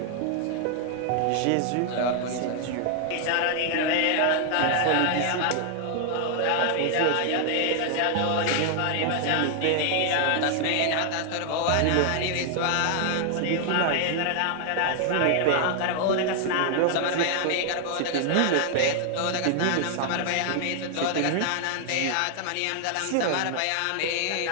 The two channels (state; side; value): different; both; correlation 0.00